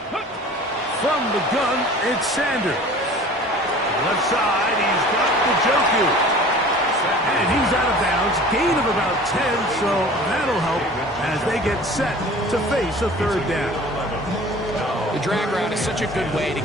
From the gun, it's Sanders. Left side, he's got Njoku. And he's out of bounds. Gain of about 10, so that'll help as they get set to face a third down. The drag route is such a good way to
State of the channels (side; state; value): both; normal; correlation 0.44